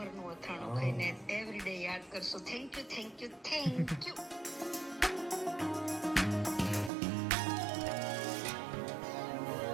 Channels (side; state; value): left; drops out; at 6.9 s